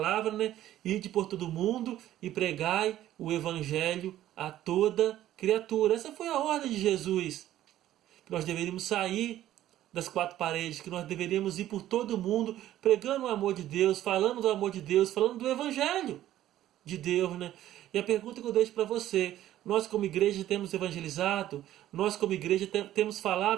né? Ide por todo mundo e pregai o evangelho a toda criatura. Essa foi a ordem de Jesus. Que nós deveríamos sair das quatro paredes, que nós deveríamos ir por todo mundo pregando o amor de Deus, falando do amor de Deus, falando do evangelho de Deus, né? E a pergunta que eu deixo para você: nós como igreja temos evangelizado? Nós como igreja temos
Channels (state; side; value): quieter; left; 13.2 dB